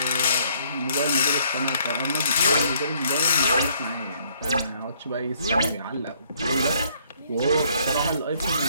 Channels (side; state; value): both; inverted; correlation -0.64